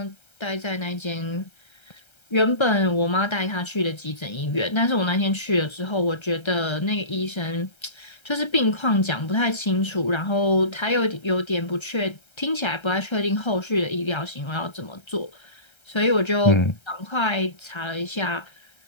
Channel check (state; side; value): late; right; 1.3 ms